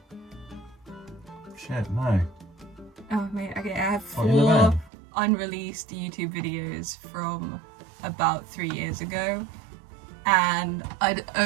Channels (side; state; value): left; drops out; at 4.9 s